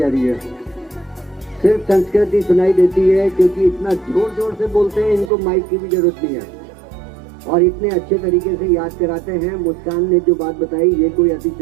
रही है, सिर्फ संस्कृत ही सुनाई देती है, क्योंकि इतना जोर जोर से बोलते हैं, इनको माइक की भी जरूरत नहीं है और इतने अच्छे तरीके से याद कराते हैं। मुस्कान ने जो बात बताई ये कोई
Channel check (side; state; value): left; drops out; at 5.3 s